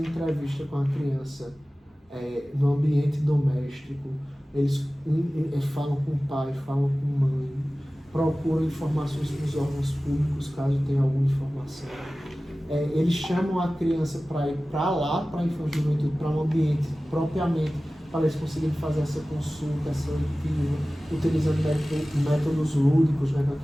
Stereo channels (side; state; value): both; normal; correlation 0.97